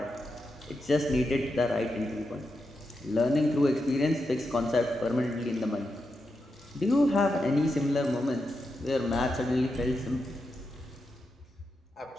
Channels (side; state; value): both; normal; correlation 0.86